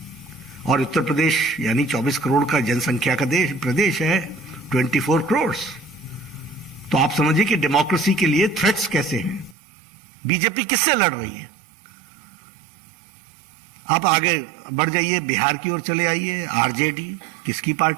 और उत्तर प्रदेश यानी 24 करोड़ का जनसंख्या का प्रदेश है, 24 करोड़। तो आप समझिए कि डेमोक्रेसी के लिए थ्रेट्स कैसे हैं। बीजेपी किससे लड़ रही है? आप आगे बढ़ जाइए, बिहार की ओर चले आइए, आरजेडी, किसकी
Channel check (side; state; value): left; drops out; at 9.6 s